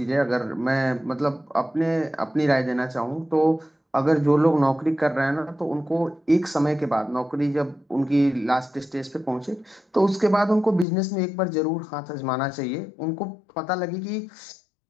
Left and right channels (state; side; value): drops out; right; at 10.9 s